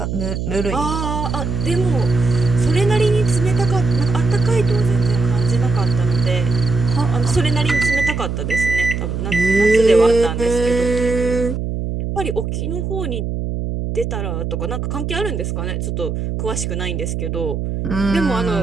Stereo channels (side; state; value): right; noise; hum, 3 dB below the sound